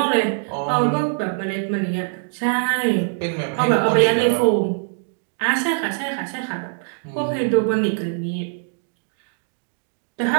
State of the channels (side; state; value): left; silent; digital silence